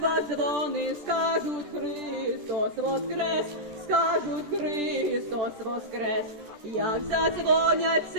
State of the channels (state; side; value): late; left; 14 ms